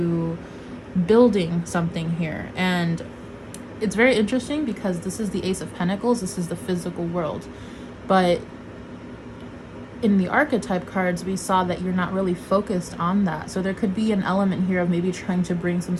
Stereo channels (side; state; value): both; identical; correlation 1.00